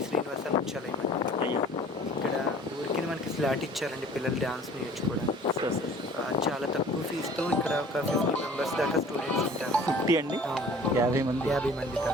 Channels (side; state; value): both; normal; correlation 0.49